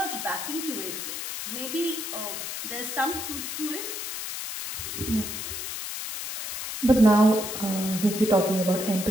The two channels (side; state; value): left; noise; hiss, 5 dB below the sound